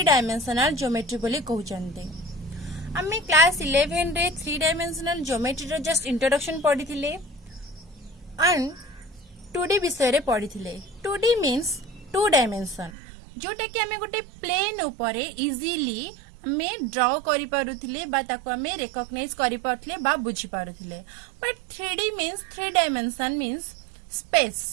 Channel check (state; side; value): drops out; left; at 12.9 s